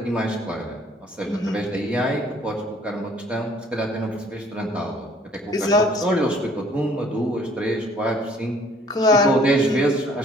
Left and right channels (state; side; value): normal; both; correlation 0.58